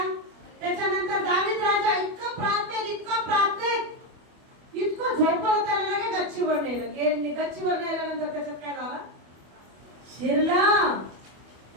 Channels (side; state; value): left; late; 25 ms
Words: त्याच्यानंतर दावीद राजा इतका प्रार्थनेत इतकं झोपलं, त्याला लगे गच्चीवर नेलं. गच्चीवर नेल्यानंतर त्याच्यात काय झालं? शिरला.